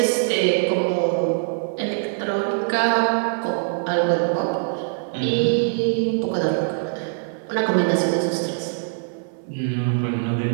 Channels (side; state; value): left; silent; 62 dB below the other